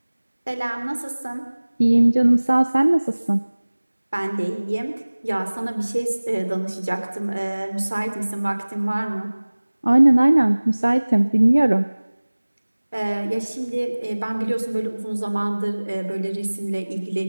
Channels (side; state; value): both; inverted; correlation -1.00